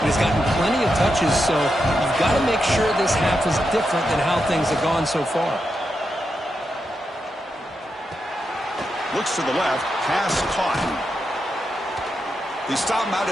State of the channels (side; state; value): both; normal; correlation 0.86